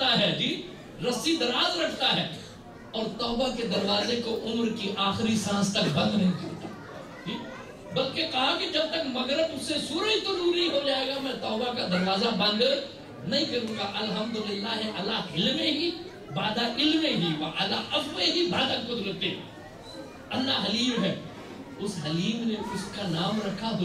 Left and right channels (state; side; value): identical; both; correlation 1.00